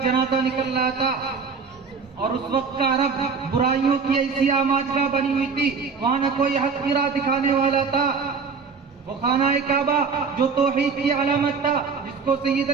جنازہ نکل رہا تھا، اور اس وقت کا عرب برائیوں کی ایسی آماجگاہ بنی ہوئی تھی، وہاں نہ کوئی حق کی راہ دکھانے والا تھا۔ وہ خانہ کعبہ جو توحید کی علامت تھا، جس کو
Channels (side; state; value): left; quieter; 5.3 dB